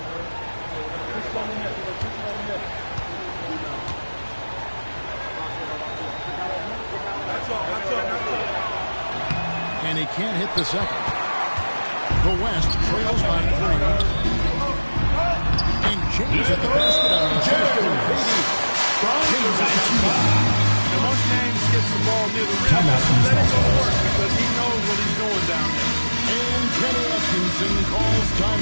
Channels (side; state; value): both; inverted; correlation -1.00